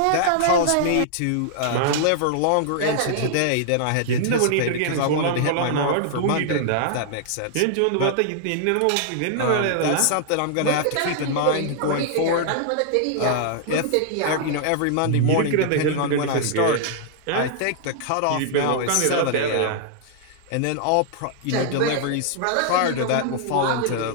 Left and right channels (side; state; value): both; different; correlation -0.01